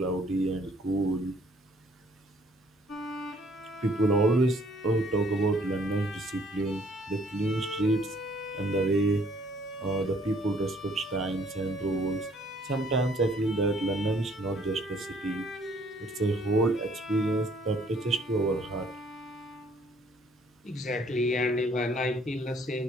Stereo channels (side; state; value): both; normal; correlation 0.62